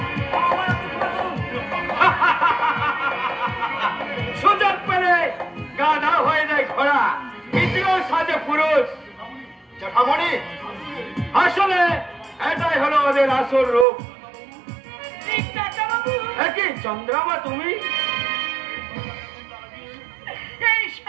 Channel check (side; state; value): left; drops out; at 13.9 s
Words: সুযোগ পেলে গাধা হয়ে যায় ঘোড়া, দ্বিতীয় সাজে পুরুষ। জ্যাঠামণি, আসলে এটাই হলো ওদের আসল রূপ। কি চন্দ্রামা তুমি? এই